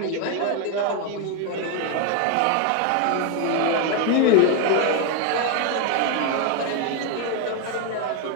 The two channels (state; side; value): different; both; correlation 0.01